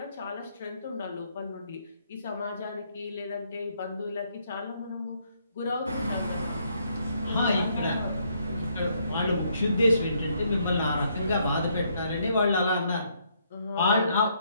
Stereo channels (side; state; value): both; inverted; correlation -0.71